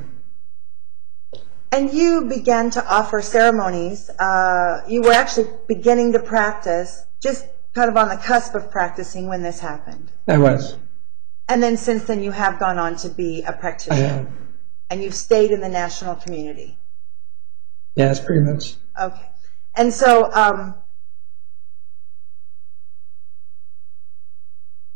And you began to offer ceremonies. You were actually beginning to practice, just kind of on the cusp of practicing when this happened. I was. And then since then you have gone on to be a practitioner. I have. And you've stayed in the national community. Yes, pretty much. Okay. And so,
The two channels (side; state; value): left; silent; 68 dB below the other